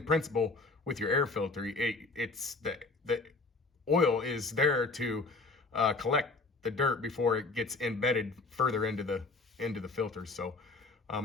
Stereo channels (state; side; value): quieter; right; 3.6 dB